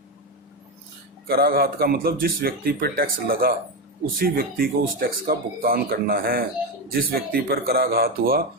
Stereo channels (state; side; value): normal; both; correlation 0.12